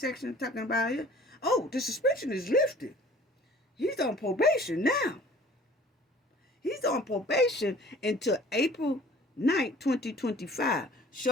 talking about it, oh, the suspension is lifted. He's on probation now. He's on probation until April 9th, 2025.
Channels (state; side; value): normal; both; correlation 0.50